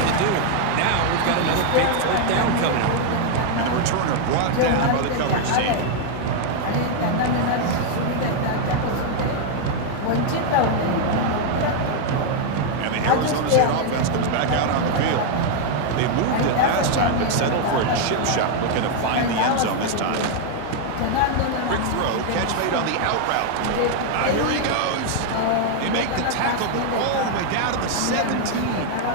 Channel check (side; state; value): both; different; correlation 0.00